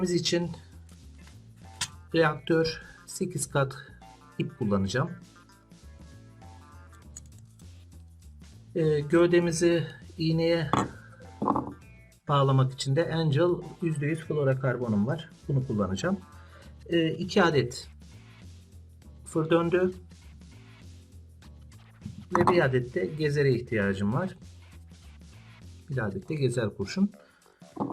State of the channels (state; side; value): identical; both; correlation 1.00